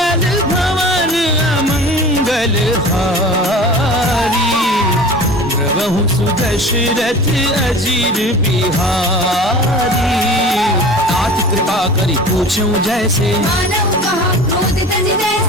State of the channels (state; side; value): normal; both; correlation 0.38